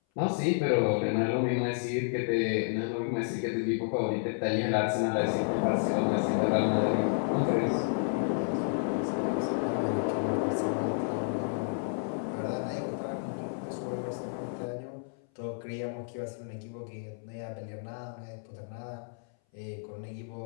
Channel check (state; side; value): silent; right; 57 dB below the other